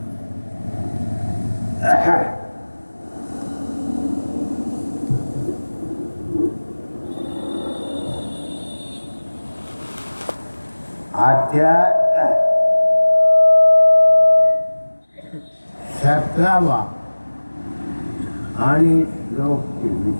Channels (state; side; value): inverted; both; correlation -1.00